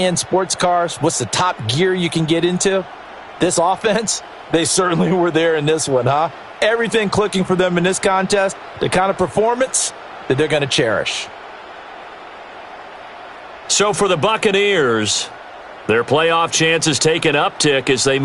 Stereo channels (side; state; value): both; identical; correlation 1.00